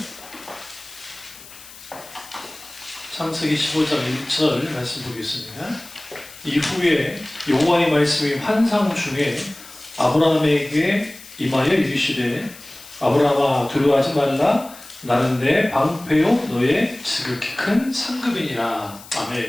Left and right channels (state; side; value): noise; left; hiss, 18 dB below the sound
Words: 창세기 15장 1절 말씀 보겠습니다. 이후에 여호와의 말씀이 환상 중에 아브라함에게 임하여 이르시되 아브라함아 두려워하지 말라 나는 내 방패요 너의 지극히 큰 상급이니라.